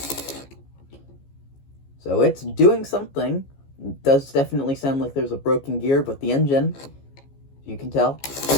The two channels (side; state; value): right; late; 15 ms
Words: So it's doing something. It does definitely sound like there's a broken gear, but the engine, you can tell,